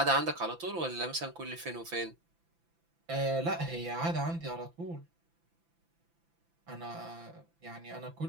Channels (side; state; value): left; late; 5.9 ms